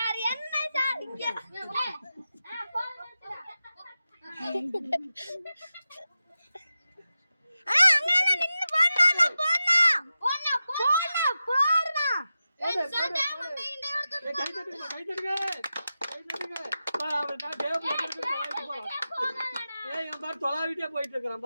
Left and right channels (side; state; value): both; inverted; correlation -0.92